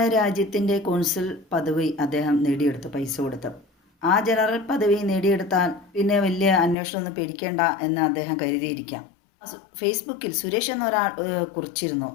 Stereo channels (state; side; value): drops out; right; at 6.8 s